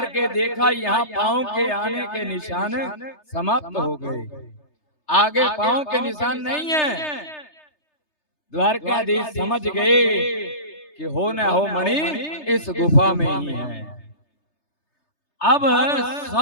के देखा यहाँ पांव के आने के निशान समाप्त हो गए, आगे पांव के निशान नहीं है। द्वारकाधीश समझ गए कि हो न हो मणि इस गुफा में ही है। अब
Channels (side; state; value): right; late; 3.3 ms